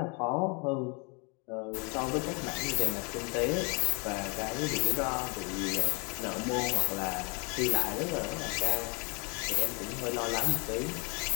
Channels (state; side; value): quieter; right; 33.0 dB